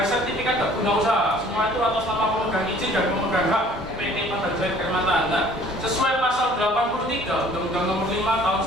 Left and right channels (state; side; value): normal; both; correlation 0.53